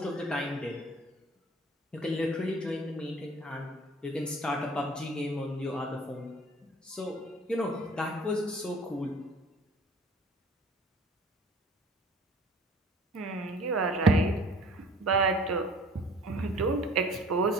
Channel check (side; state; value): both; normal; correlation 0.50